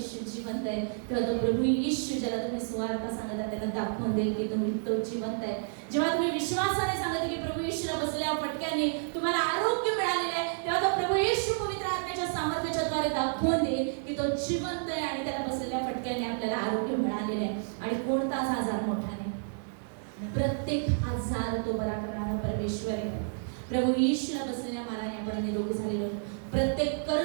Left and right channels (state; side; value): silent; left; digital silence